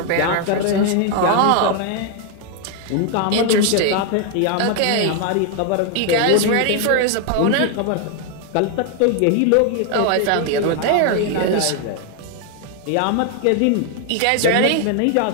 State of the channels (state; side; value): different; both; correlation 0.01